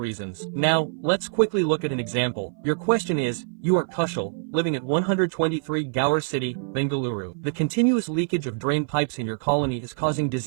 Now, let's quickly look at an example. Your question is, You are Kushal, living at 123 Gower City, Bengaluru. The continuous leakage of drain pipes in your colony is causing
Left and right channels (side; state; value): left; silent; 58 dB below the other